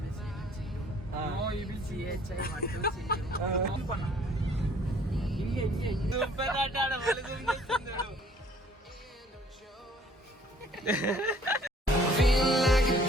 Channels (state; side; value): normal; both; correlation 0.57